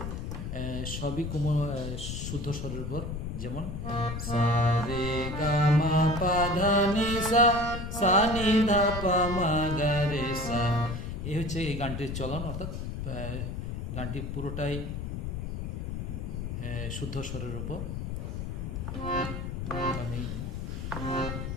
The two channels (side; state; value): left; noise; rumble, 5 dB below the sound